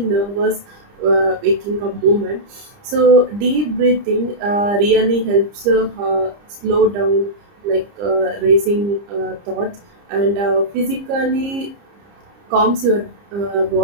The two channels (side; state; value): left; late; 30 ms